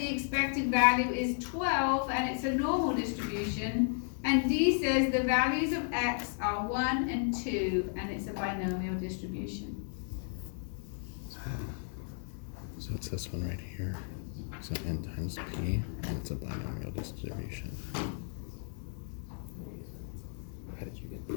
expected value is 12 and it's a normal distribution. And D says the values of X are 1 and 2 and it's a binomial distribution. So it's this one right here. So n times p, and it's a binomial distribution. How did you get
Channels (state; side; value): silent; right; 55 dB below the other